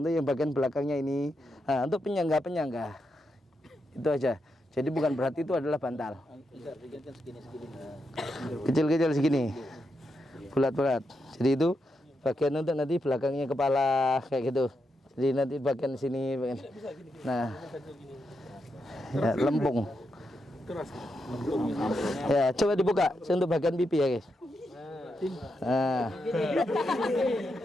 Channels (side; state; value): both; normal; correlation 0.84